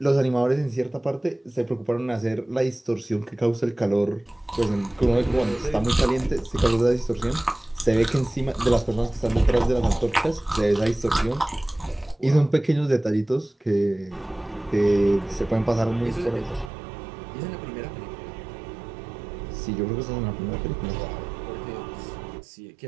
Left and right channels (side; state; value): left; drops out; at 16.7 s